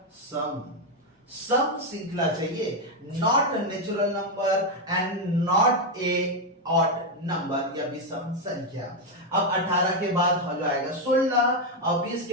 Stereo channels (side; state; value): both; normal; correlation 0.04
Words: सम श्रृंखला चाहिए, not natural number and not a odd number या विषम संख्या। अब 18 के बाद हो जाएगा 16 और 20